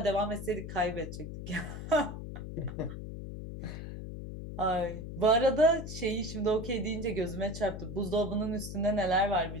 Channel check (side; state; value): left; noise; hum, 8 dB below the sound